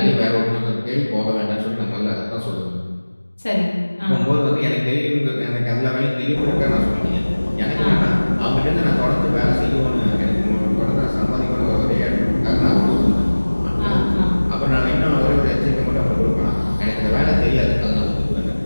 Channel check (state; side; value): inverted; both; correlation -1.00